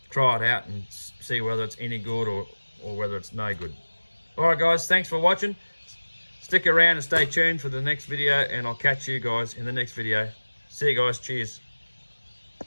try it out and see whether it's any good or whether it's no good. All right, guys, thanks for watching. Stick around and stay tuned for the next video, and I'll catch you guys in the next video. See you guys. Cheers.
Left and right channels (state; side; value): inverted; both; correlation -1.00